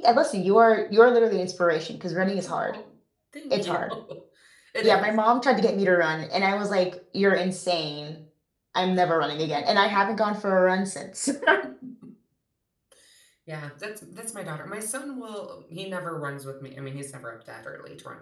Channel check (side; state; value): both; identical; correlation 1.00